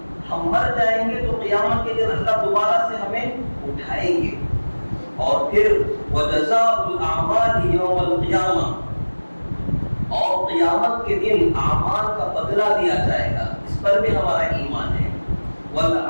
ہم مر جائیں گے تو قیامت کے دن اللہ دوبارہ سے ہمیں اٹھائیں گے۔ اور پھر وجزاء الاعمال یوم القیامہ، اور قیامت کے دن اعمال کا بدلہ دیا جائے گا، اس پر بھی ہمارا ایمان ہے۔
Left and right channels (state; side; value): inverted; both; correlation -1.00